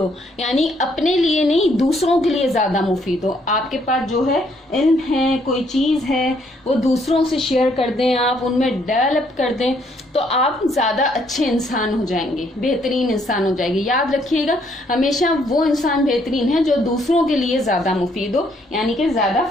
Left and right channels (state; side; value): normal; both; correlation 0.69